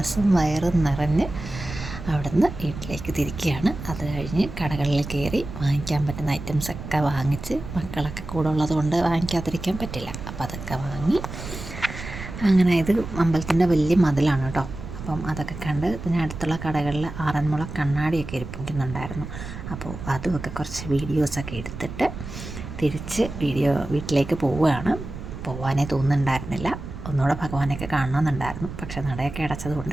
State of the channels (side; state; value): right; noise; rumble, 10 dB below the sound